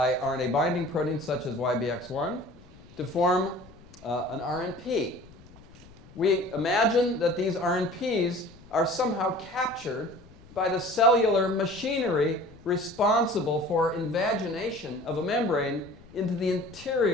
RNA binding proteins such as YBX1 to form an RNP. We imagine that these RNPs are somehow captured by the cellular machinery responsible for invagination of a membrane into the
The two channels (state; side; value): noise; left; rumble, 23 dB below the sound